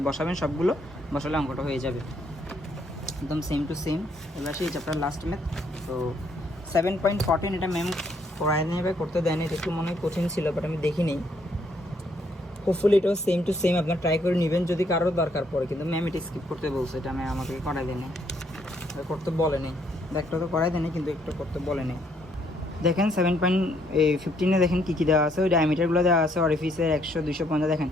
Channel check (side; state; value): both; normal; correlation 0.70